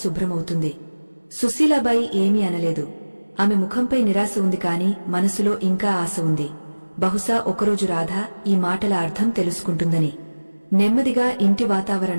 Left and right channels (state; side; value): inverted; both; correlation -1.00